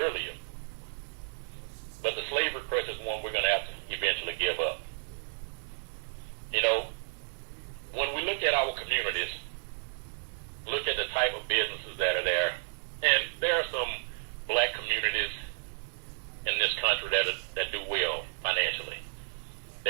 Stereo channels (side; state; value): left; silent; digital silence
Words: But the slavery crutch is one we're going to have to eventually give up. When we look at our communities, look at the type of businesses that are there, and there are some black communities in this country that do well financially.